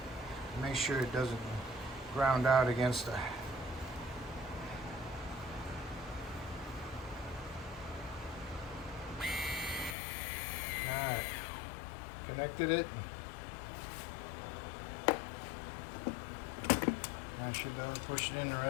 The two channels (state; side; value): drops out; right; at 10.0 s